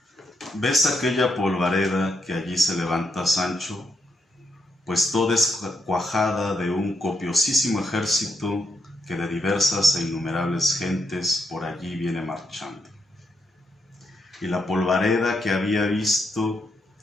¿Ves aquella polvareda que allí se levanta, Sancho? Pues toda es cuajada de un copiosísimo ejército que de diversas e innumerables gentes por allí viene marchando. Y la polvareda que había visto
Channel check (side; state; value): both; normal; correlation 0.80